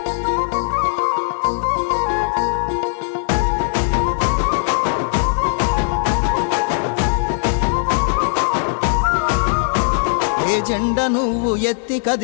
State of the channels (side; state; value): right; silent; digital silence